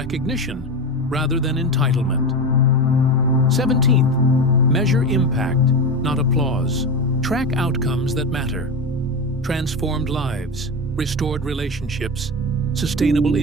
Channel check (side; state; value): both; normal; correlation 0.20